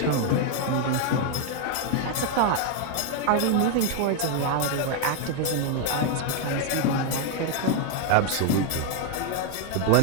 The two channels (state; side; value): different; both; correlation 0.00